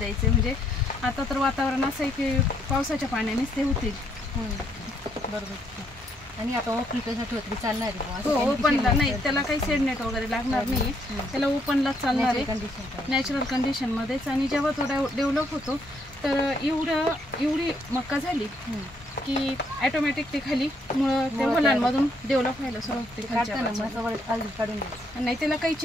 म्हणजे आता तर वातावरण असं आहे की पावसाच्या पाण्यानेच ते होतील. बरोबर. आणि आता ओपनसाठी होत चालणार आहे? हो, ओपनला नाही. त्याला काही सेडनेट वगैरे लागणार नाही. त्याला ओपनलाच चालणार आहे, नॅचरल कंडिशनमध्येच. आणि जेव्हा तो डेव्हलप होतो तर एवढी मक्का झाली की ऑटोमॅटिक ते खाली मुळं त्या मुलांमधून डेव्हलप व्हायला सुरुवात होते. नाही त्याला काही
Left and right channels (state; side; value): normal; both; correlation 0.72